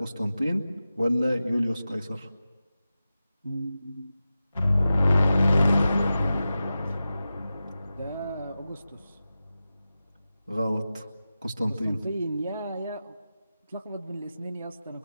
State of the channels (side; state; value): both; inverted; correlation -0.93